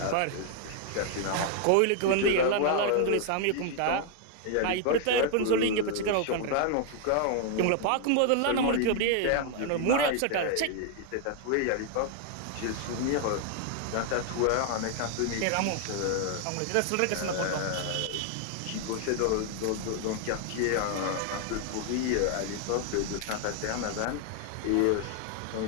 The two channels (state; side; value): different; both; correlation 0.00